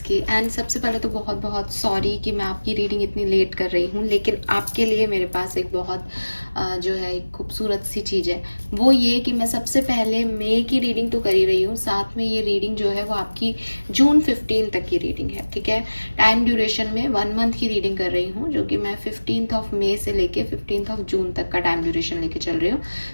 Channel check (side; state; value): both; inverted; correlation -1.00